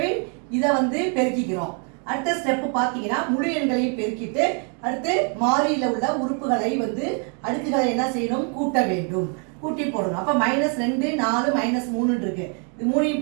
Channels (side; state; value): left; quieter; 40.0 dB